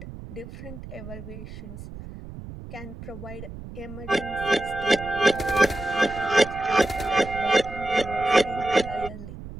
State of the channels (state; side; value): noise; right; rumble, 12 dB below the sound